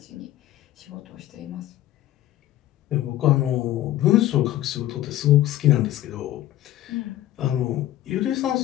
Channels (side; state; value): right; quieter; 14.0 dB